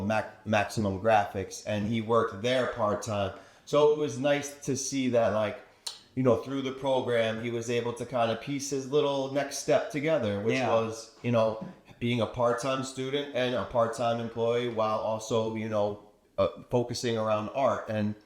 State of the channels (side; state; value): both; identical; correlation 1.00